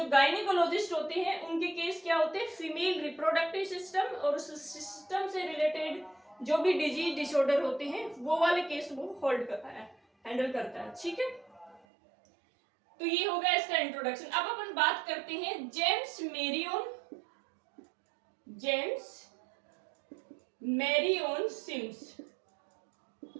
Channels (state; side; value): drops out; left; at 11.8 s